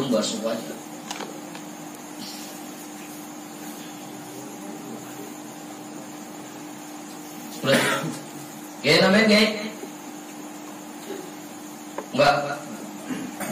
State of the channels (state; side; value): identical; both; correlation 1.00